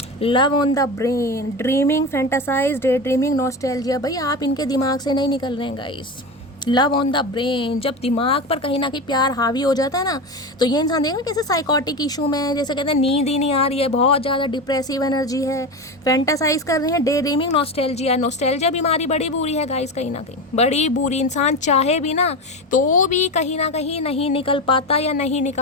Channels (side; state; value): both; normal; correlation 0.22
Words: Love on the brain, dreaming, fantasize, day dreaming, nostalgia. भाई आप इनके दिमाग से नहीं निकल रहे हैं guys. Love on the brain, जब दिमाग पर कहीं ना कहीं प्यार हावी हो जाता है ना, तो ये इंसान देखना कैसे साइकोटिक इशू में है, जैसे कहते हैं नींद ही नहीं आ रही है, बहुत ज़्यादा डिप्रेसिव एनर्जी है, फैंटासाइज कर रहे हैं, डे ड्रीमिंग, नॉस्टैल्जिया। नॉस्टैल्जिया बीमारी बड़ी बुरी है गाइस, कहीं ना कहीं बड़ी बुरी। इंसान चाहे भी ना तो भी कहीं ना कहीं नहीं निकल पाता या नहीं